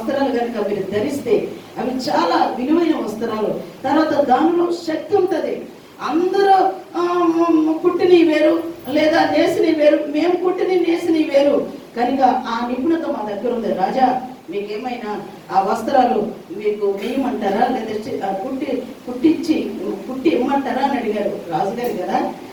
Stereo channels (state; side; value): identical; both; correlation 1.00